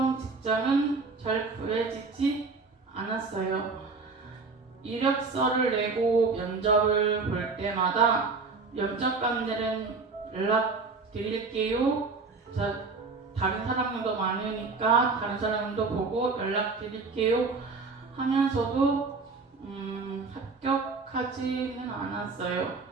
직장은 잘 구해지지 않았어요. 이력서를 내고 면접을 볼 때마다 면접관들은 연락 드릴게요. 다른 사람들도 많으니까 다른 사람도 보고 연락 드릴게요 하면서도 합격하지는 않았어요.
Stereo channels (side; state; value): left; quieter; 4.2 dB